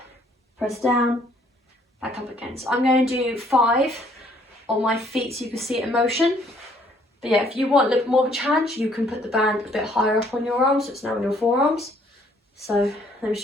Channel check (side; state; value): both; normal; correlation 0.63